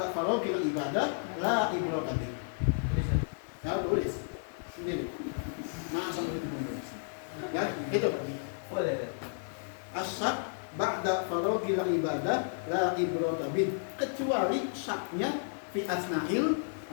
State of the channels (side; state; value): right; silent; digital silence